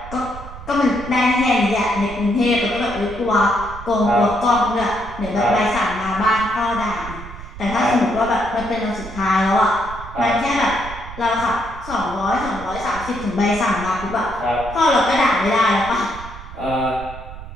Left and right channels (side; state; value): right; noise; rumble, 13 dB below the sound